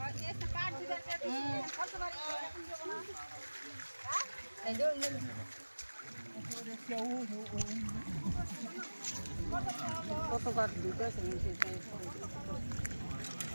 আর একটা পাড় দিবেন কত বাড়ি না এই যে কতবার দুটো শুনছি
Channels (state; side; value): inverted; both; correlation -1.00